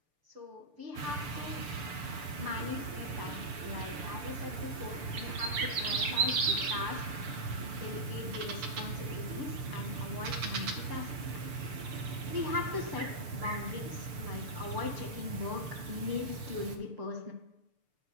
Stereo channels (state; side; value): late; left; 6.8 ms